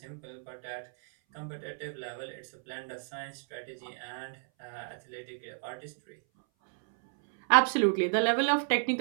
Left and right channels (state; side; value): silent; left; 56 dB below the other